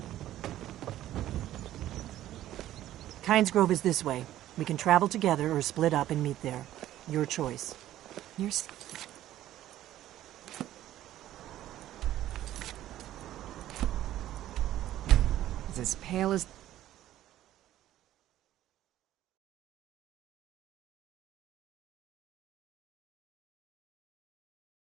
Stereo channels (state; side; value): quieter; left; 13.3 dB